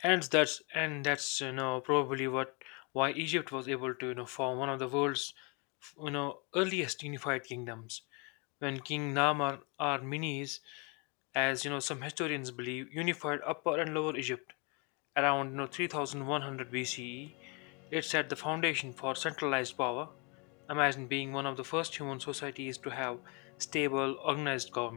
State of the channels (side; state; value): right; quieter; 32.2 dB